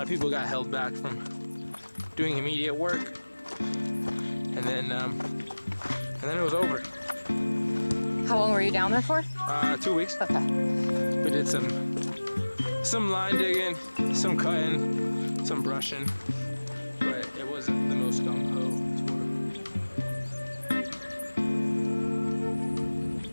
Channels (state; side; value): inverted; both; correlation -1.00